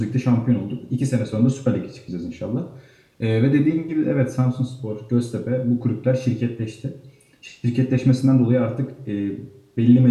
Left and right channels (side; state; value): both; identical; correlation 1.00